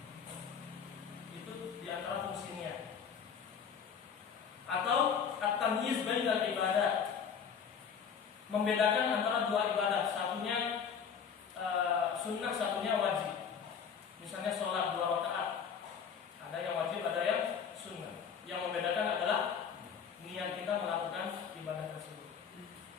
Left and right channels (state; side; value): quieter; right; 7.0 dB